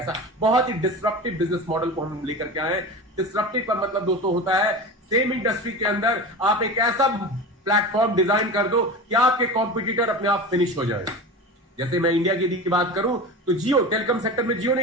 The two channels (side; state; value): both; normal; correlation 0.29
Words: बहुत ही डिस्रप्टिव बिजनेस मॉडल को हम लेकर के आए। डिस्रप्टिव का मतलब दोस्तों होता है सेम इंडस्ट्री के अंदर आप एक ऐसा प्लेटफॉर्म डिजाइन कर दो कि आपके कॉम्पिटिटर अपने आप फिनिश हो जाए। जैसे मैं इंडिया की बात करूं तो जियो, टेलीकॉम सेक्टर में जियो ने